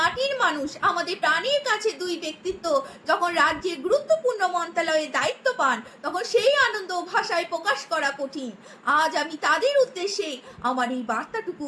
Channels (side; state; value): both; identical; correlation 1.00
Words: মানুষ, আমাদের প্রাণীর কাছে দুই ব্যক্তিত্ব যখন রাজ্যের গুরুত্বপূর্ণ মন্ত্রণালয়ে দায়িত্ব পান, তখন সেই আনন্দ ভাষায় প্রকাশ করা কঠিন। আজ আমি তাদের উদ্দেশ্যে আমার এই বার্তাটুকু